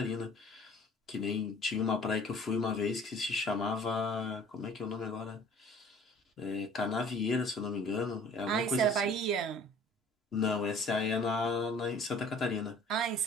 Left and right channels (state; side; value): normal; both; correlation 0.50